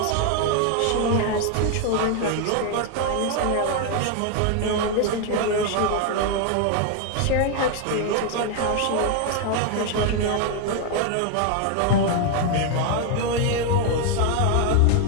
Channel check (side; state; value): both; different; correlation 0.01